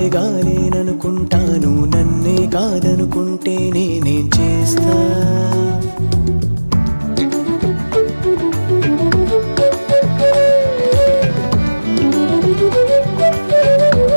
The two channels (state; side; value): inverted; both; correlation -1.00